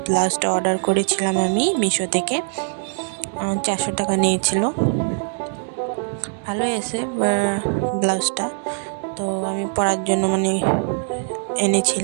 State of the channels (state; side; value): silent; left; digital silence